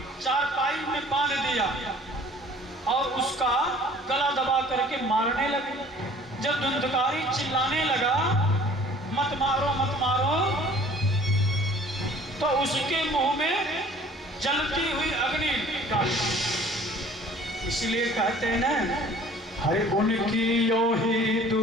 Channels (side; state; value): both; normal; correlation 0.51